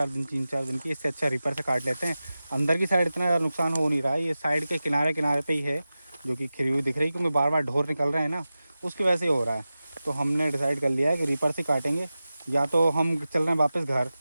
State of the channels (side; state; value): both; inverted; correlation -0.95